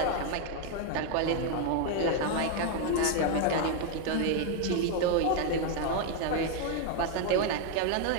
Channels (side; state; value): both; different; correlation 0.01